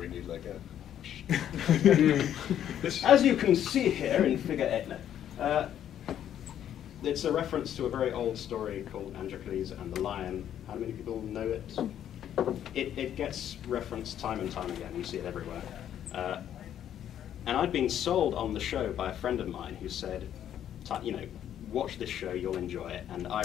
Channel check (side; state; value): right; quieter; 10.4 dB